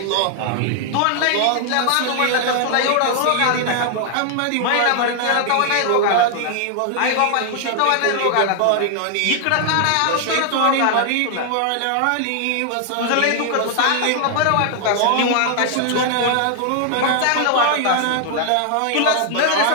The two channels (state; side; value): different; both; correlation 0.00